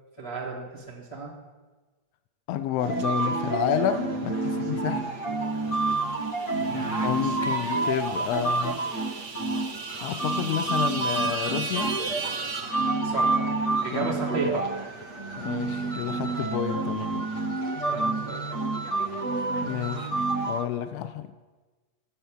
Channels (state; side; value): late; right; 8.5 ms